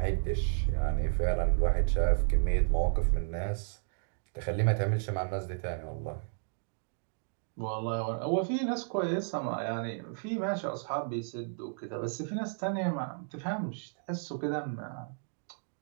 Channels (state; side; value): silent; left; digital silence